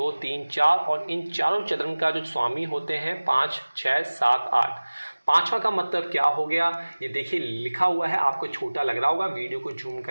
3 4, और इन चारों चरण का जो स्वामी होते हैं 5 6 7 8। पांचवा का मतलब क्या हो गया ये देखिए लिखा हुआ है, आपको छोटा लग रहा होगा, वीडियो को जूम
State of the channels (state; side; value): inverted; both; correlation -1.00